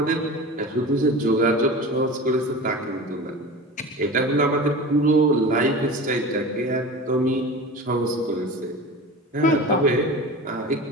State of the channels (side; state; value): both; normal; correlation 0.33